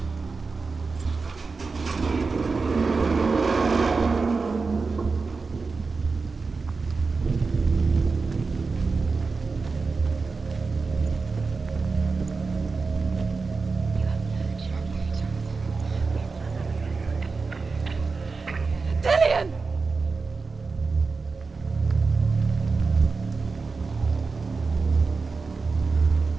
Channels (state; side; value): quieter; left; 4.3 dB